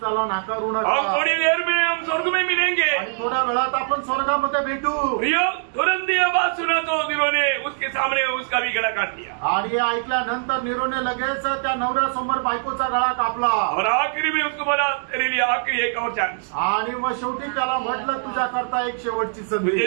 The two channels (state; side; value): silent; left; digital silence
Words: नाकारू नका. हम थोड़ी देर में हम स्वर्ग में मिलेंगे, आणि थोड्या वेळात आपण स्वर्गामध्ये भेटू. प्रियो, तुरंत ये बात सुना तो नीरो ने उसके सामने उसका भी गला काट दिया, आणि हे ऐकल्यानंतर नीरोने लगेच त्या नवऱ्यासमोर बायकोचा गळा कापला, और आखिरी में उसको बोला तेरे लिए आखिरी एक और चांस, आणि मग शेवटी त्याला म्हटलं तुझ्या करता एक शेवटची संधी,